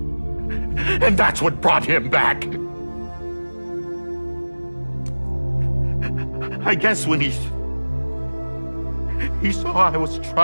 And that's what brought him back. I guess when he saw I was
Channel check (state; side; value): inverted; both; correlation -1.00